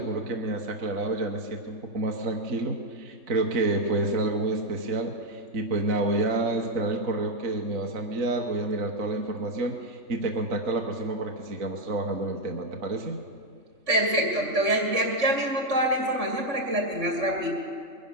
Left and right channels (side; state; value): left; late; 3.5 ms